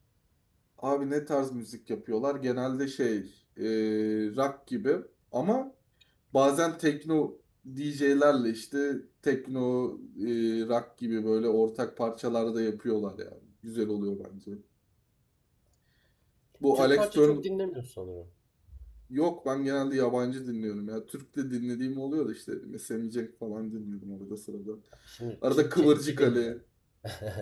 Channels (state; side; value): identical; both; correlation 1.00